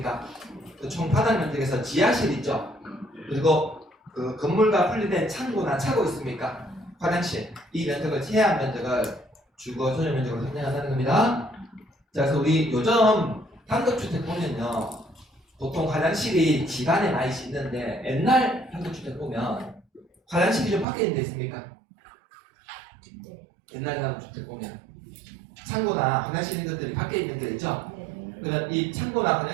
그 총 바닥 면적에서 지하실 있죠? 그리고 그 건물과 분리된 창고나 차고 있습니까? 화장실. 이 면적을 제한 면적을 주거 전용 면적으로 산정한다는 겁니다. 자, 그래서 우리 요즘 단독주택 보면요, 보통 화장실이 집 안에 많이 있는데 옛날 단독주택 보면 화장실이 좀 밖에 있는 데 있습니까? 옛날 단독주택 보면 창고나 화장실 있는 것들이 밖에 있는 데 있죠? 그러면 이 창고나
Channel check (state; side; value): drops out; left; at 20.9 s